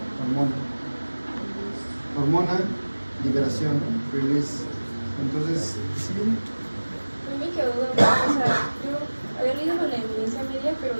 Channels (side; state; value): both; inverted; correlation -1.00